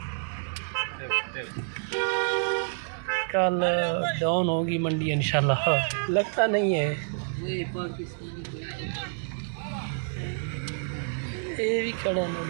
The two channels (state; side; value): silent; left; digital silence